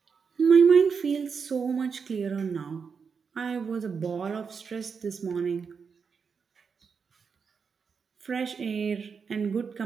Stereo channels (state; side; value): quieter; left; 5.9 dB